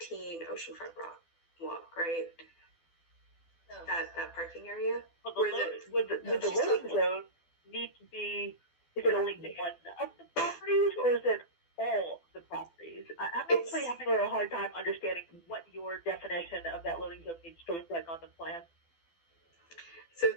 Oceanfront Walk, right? No. That parking area. Well, Where would the loading zone need to be? Is it only one of the properties, or is it all the properties? I'm actually having a little hard time understanding what your definition of that loading zone needs to look like on the plan. So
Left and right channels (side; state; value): right; late; 12 ms